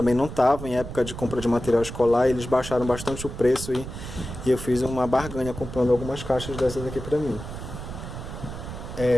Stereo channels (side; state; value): right; noise; rumble, 9 dB below the sound